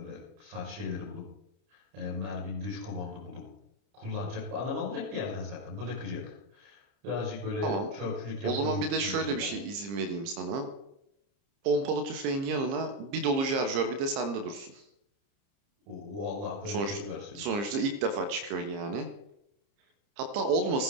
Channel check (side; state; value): left; late; 30 ms